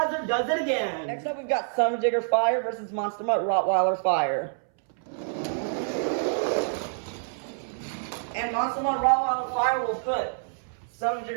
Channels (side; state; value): left; silent; 60 dB below the other